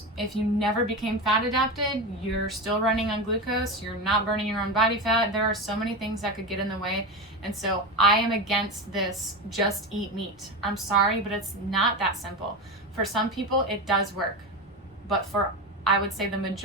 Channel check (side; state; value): both; normal; correlation 0.20